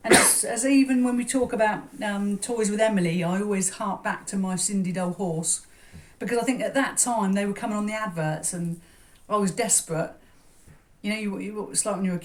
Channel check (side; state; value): both; identical; correlation 1.00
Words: And as even when we talk about toys with Emily, I always hark back to my Sindy Dole horse, because I think at that time they were coming on the adverts and I was desperate. You know, it's like when you're a